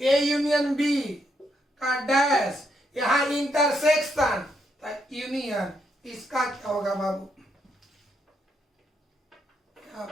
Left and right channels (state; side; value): normal; both; correlation 0.77